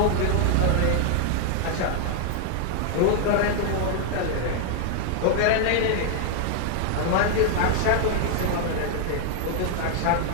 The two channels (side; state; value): both; different; correlation 0.00